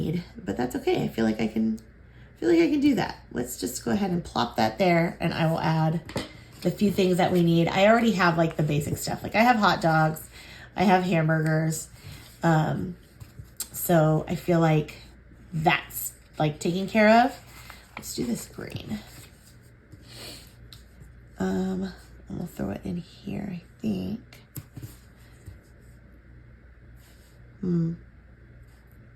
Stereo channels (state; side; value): identical; both; correlation 1.00